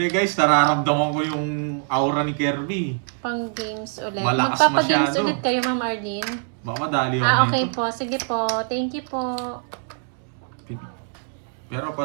guys, nararamdaman ko yung aura ni Kirby. Pang games ulit. Malakas Magpapagames masyado. ulit kayo, Ma'am Arlene. Baka madali ako Okay dito. po. Sige po. Thank you po. Pero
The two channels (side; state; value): left; silent; 56 dB below the other